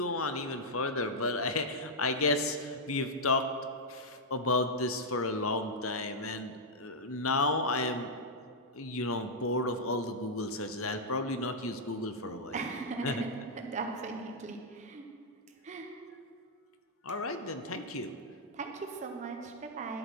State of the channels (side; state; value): both; normal; correlation -0.06